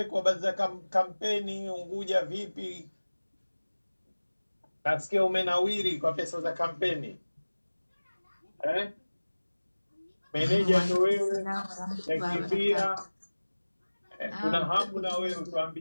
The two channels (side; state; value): both; inverted; correlation -1.00